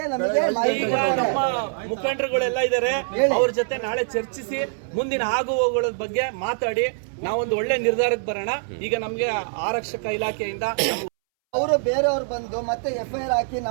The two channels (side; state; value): left; silent; 63 dB below the other